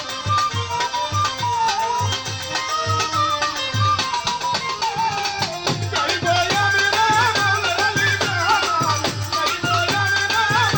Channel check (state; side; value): identical; both; correlation 1.00